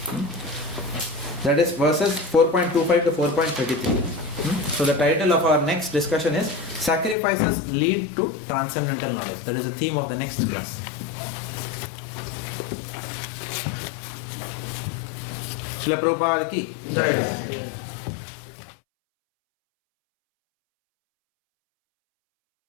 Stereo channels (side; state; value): right; drops out; at 7.2 s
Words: That is verses 4.25 to 4.33. So the title of our next discussion is Sacrifices Lead to Transcendental Knowledge. That is the theme of the next class. Srila Prabhupada ki Jai.